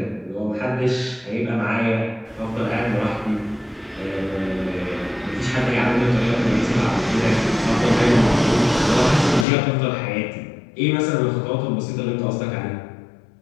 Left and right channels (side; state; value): right; drops out; at 9.5 s